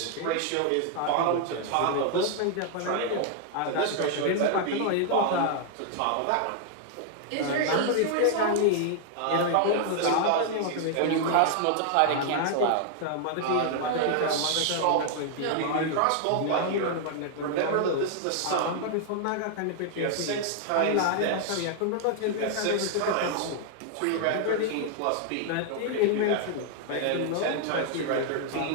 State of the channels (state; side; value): different; both; correlation 0.00